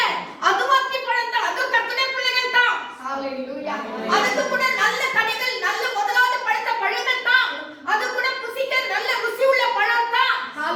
அதுவும் அத்திப்பழம் தான், அதுவும் கர்த்தருடைய பிள்ளைகள் தான். ஹalleluya. அதுக்கு கூட நல்ல கனிகள், நல்ல முதலாவது பழுத்த பழங்கள் தான், அது கூட புசிக்க நல்ல ருசி உள்ள பழம் தான்.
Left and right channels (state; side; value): identical; both; correlation 1.00